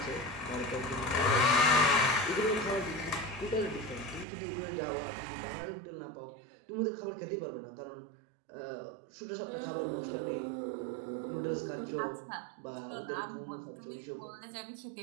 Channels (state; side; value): drops out; left; at 4.2 s